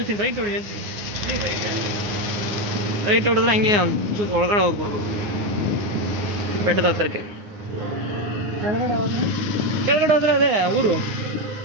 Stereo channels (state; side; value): late; left; 9.6 ms